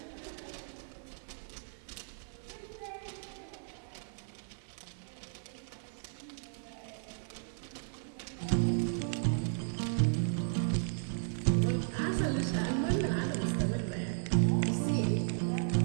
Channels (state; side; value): silent; left; 54 dB below the other